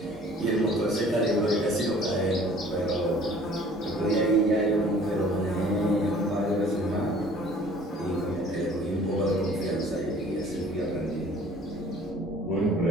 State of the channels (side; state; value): both; normal; correlation 0.52